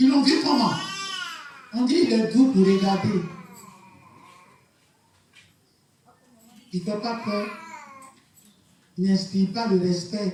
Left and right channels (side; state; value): both; identical; correlation 1.00